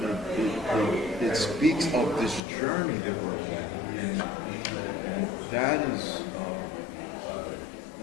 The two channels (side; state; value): right; drops out; at 2.4 s